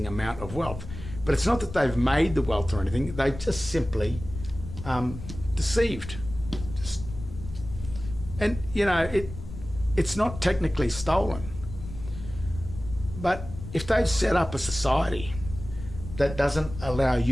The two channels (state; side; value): noise; left; rumble, 11 dB below the sound